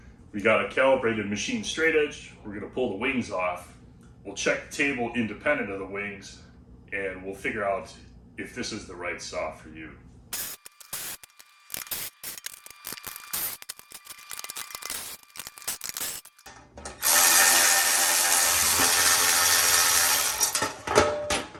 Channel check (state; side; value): identical; both; correlation 1.00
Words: We got a calibrated machine straight edge. We're gonna pull the wings off. We'll check the table independent of the wings, and we'll figure out if this is the right saw for you.